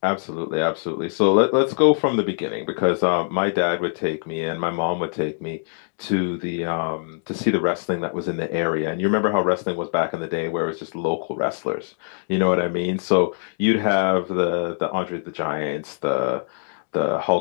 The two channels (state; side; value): silent; right; digital silence